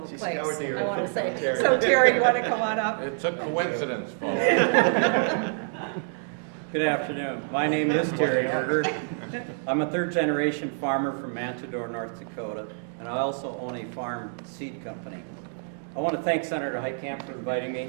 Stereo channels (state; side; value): silent; left; digital silence